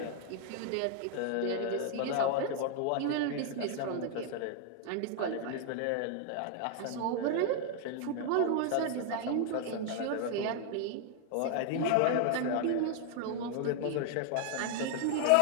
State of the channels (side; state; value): both; different; correlation 0.00